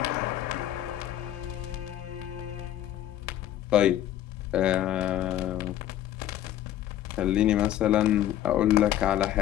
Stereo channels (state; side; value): quieter; right; 12.3 dB